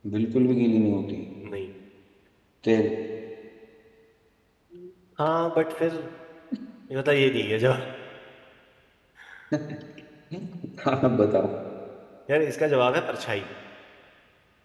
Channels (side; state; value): both; identical; correlation 1.00